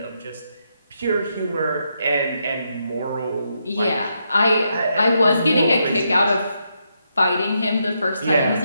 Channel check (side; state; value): both; inverted; correlation -0.81